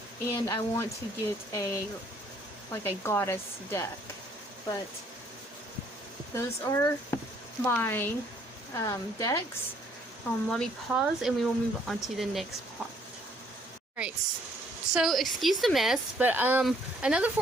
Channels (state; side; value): normal; both; correlation 0.64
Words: and I want to get a goddess deck. But those are my decks. Let me pause and we will move on to the next part. Alright, so excuse the mess, but another